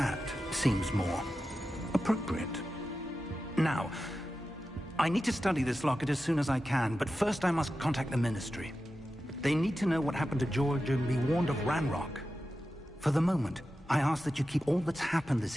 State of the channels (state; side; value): normal; both; correlation 0.92